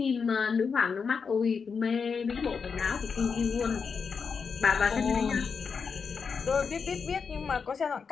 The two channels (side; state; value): right; quieter; 5.7 dB